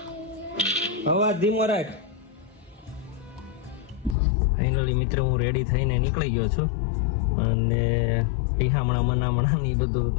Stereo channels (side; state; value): right; drops out; at 4.2 s